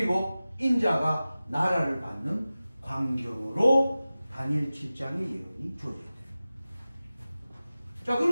인자가 나라를 받는 광경으로 다니엘 7장의 예언이 주어져요. 자,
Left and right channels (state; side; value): inverted; both; correlation -0.96